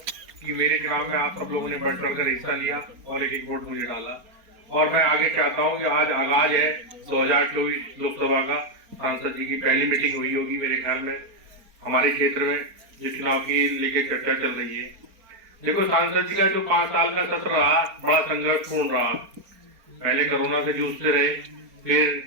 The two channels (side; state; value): left; late; 4.3 ms